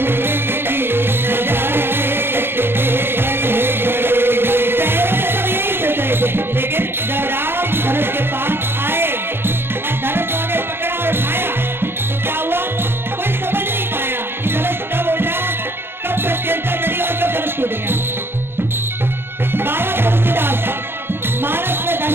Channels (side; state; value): left; late; 0.11 ms